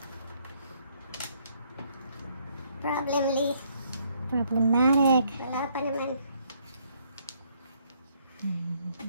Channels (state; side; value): inverted; both; correlation -0.69